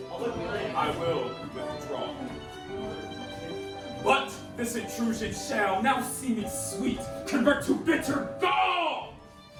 I will withdraw. But this intrusion shall now see me sweet, convert to bitter gall!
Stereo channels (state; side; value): identical; both; correlation 1.00